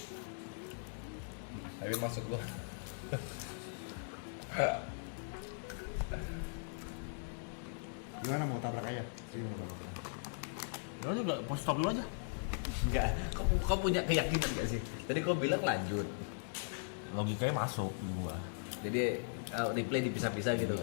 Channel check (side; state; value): right; silent; digital silence